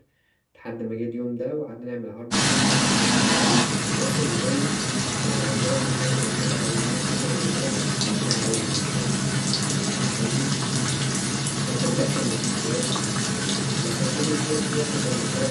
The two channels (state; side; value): identical; both; correlation 1.00